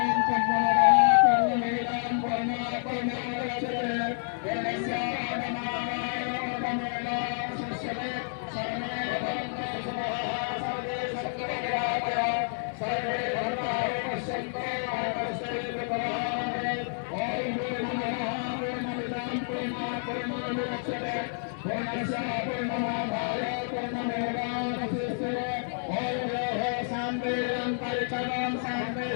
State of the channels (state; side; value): silent; right; digital silence